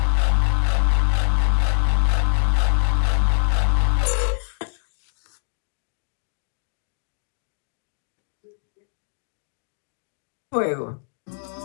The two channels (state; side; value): silent; right; digital silence